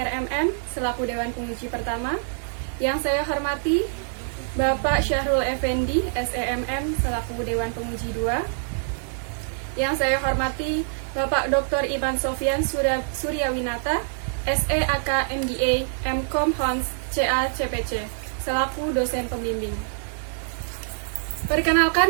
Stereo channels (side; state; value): left; silent; digital silence